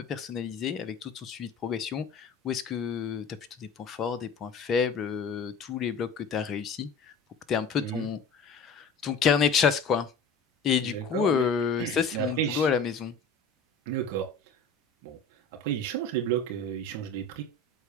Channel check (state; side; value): quieter; right; 4.0 dB